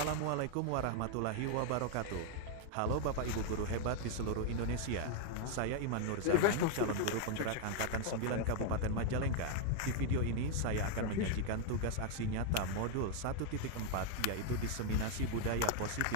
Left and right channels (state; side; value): different; both; correlation 0.00